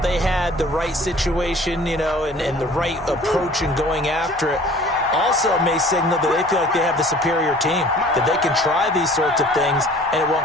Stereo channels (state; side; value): normal; both; correlation 0.49